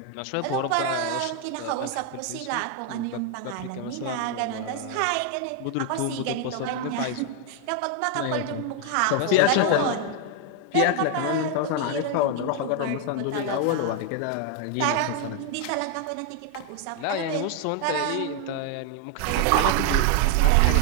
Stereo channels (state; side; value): different; both; correlation 0.01